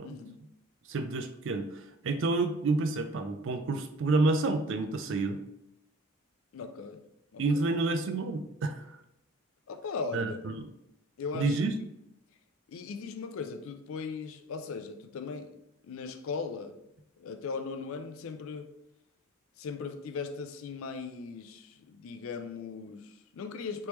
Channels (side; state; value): both; normal; correlation 0.46